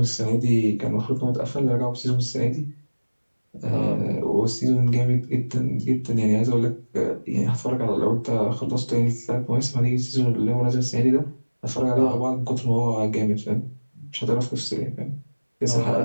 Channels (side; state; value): both; inverted; correlation -1.00